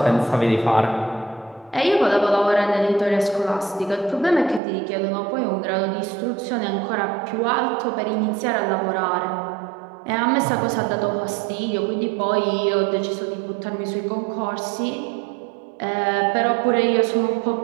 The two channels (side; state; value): left; drops out; at 4.6 s